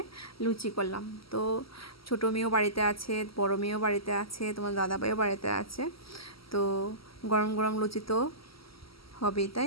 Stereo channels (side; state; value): right; late; 0.75 ms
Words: লুচি করলাম। তো ছোটো মেয়েও বাড়িতে আছে, বড় মেয়েও বাড়িতে আছে, তোমার দাদাভাইও বাড়িতে আছে। তো গরম গরম লুচি তো হবেই,